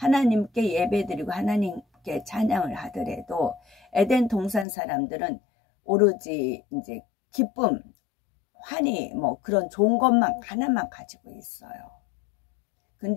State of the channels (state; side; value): drops out; right; at 4.7 s